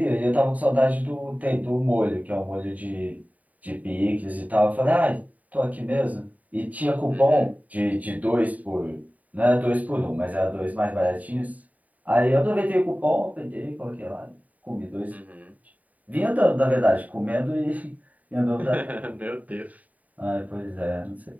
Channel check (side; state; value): left; late; 0.072 ms